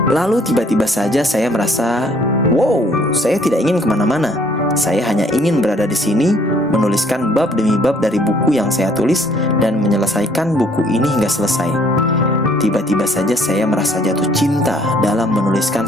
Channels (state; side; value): normal; both; correlation 0.62